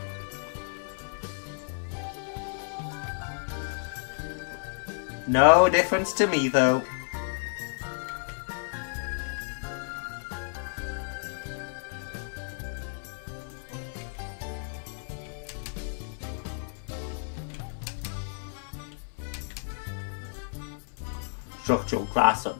No difference to me though. Structural glass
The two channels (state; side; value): silent; right; digital silence